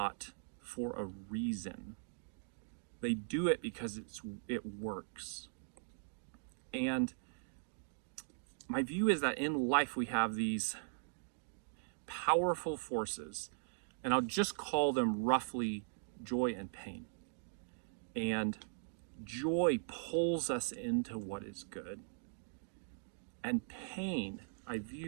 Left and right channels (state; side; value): silent; left; digital silence